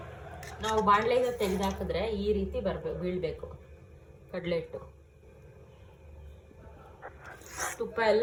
ನಾವು ಬಾಣಲೆಯಿಂದ ತೆಗೆದಾಕಿದ್ರೆ ಈ ರೀತಿ ಬೀಳಬೇಕು ಕಡಲೆ ಹಿಟ್ಟು. ತುಪ್ಪ ಎಲ್ಲ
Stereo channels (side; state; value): both; identical; correlation 1.00